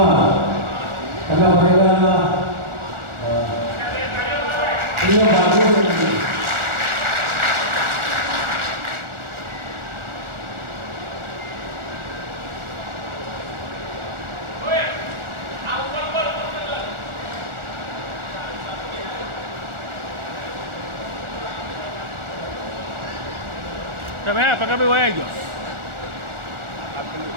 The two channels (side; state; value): left; late; 1.4 ms